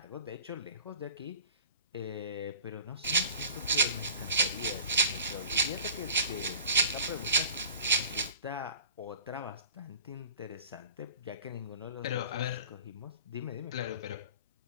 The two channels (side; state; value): both; inverted; correlation -0.45